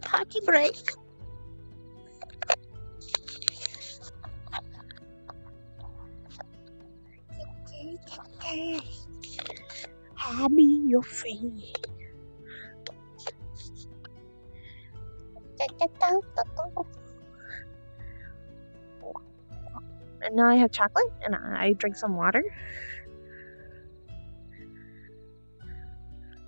party break. Hand me your fee. And now I have chocolate, and I drink some water.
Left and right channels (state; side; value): inverted; both; correlation -1.00